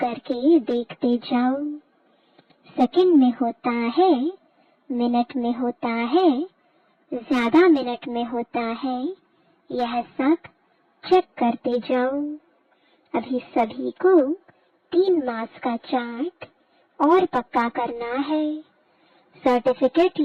देखते जाओ। सेकंड में होता है, मिनट में होता है, ज्यादा मिनट में होता है, यह सब चेक करते जाओ। अभी सभी को 3 मास का चार्ट और पक्का करना है, सर्टिफिकेट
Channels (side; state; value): both; identical; correlation 1.00